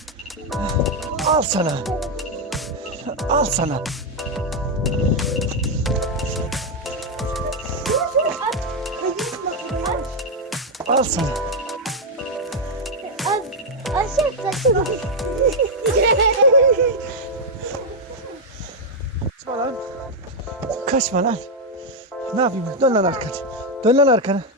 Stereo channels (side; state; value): both; normal; correlation 0.01